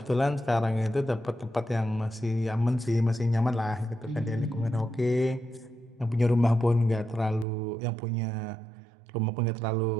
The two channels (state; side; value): drops out; left; at 7.5 s